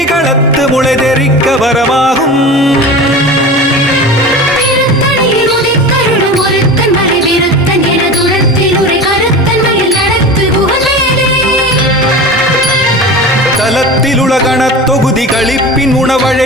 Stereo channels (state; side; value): normal; both; correlation 0.32